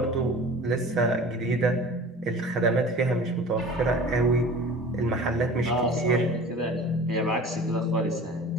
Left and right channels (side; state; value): both; normal; correlation 0.41